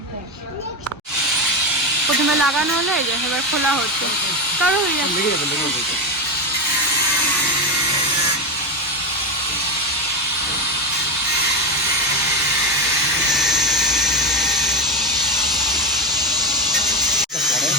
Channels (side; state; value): both; normal; correlation 0.13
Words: প্রথমে লাগানো হলো, এই যে এবার খোলা হচ্ছে। চলো হয়ে যাচ্ছে।